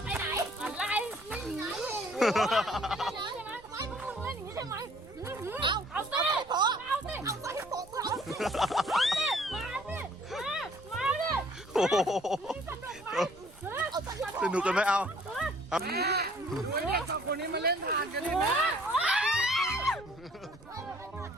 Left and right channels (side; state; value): right; noise; rumble, 22 dB below the sound